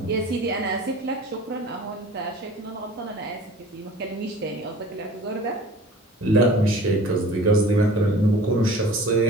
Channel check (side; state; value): both; normal; correlation 0.44